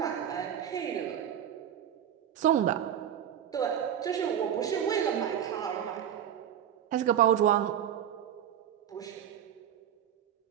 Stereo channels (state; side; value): quieter; left; 9.8 dB